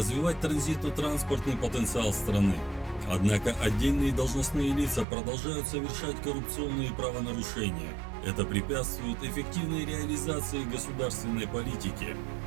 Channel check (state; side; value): drops out; left; at 5.1 s